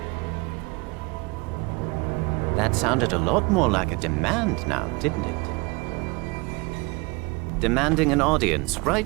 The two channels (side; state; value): left; quieter; 26.4 dB